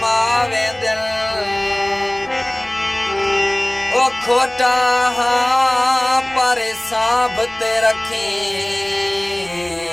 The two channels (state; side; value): noise; right; rumble, 28 dB below the sound